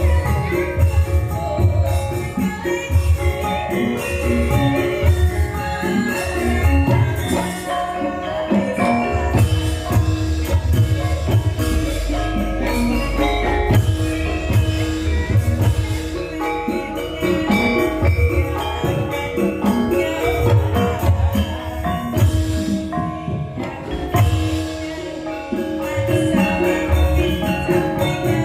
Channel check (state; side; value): identical; both; correlation 1.00